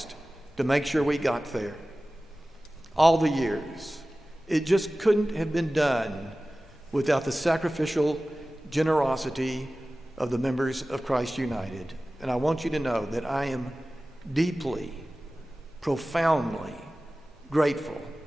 to make sure we got there. All the years. It just couldn't have been done without the sacrificial generosity of the members of Christ United. And I want you to know that I am deeply, profoundly grateful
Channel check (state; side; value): normal; both; correlation 0.97